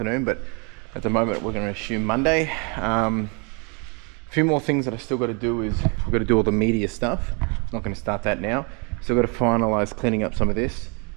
but at the moment we're going to assume Monday. A few more things that I still got to do is we've got to do all the media stuff. I'm not going to start that now. Still got to finalize cleaning up some of this.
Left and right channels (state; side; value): quieter; left; 33.7 dB